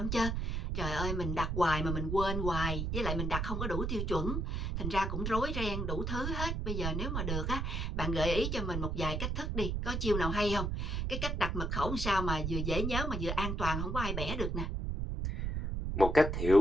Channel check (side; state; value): right; noise; rumble, 1 dB below the sound